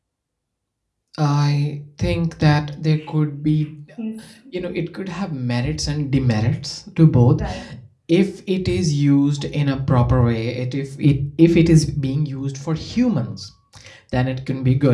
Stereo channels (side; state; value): both; identical; correlation 1.00